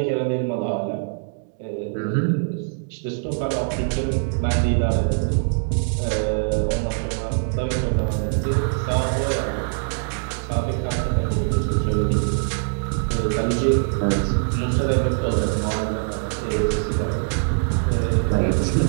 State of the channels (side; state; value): left; silent; digital silence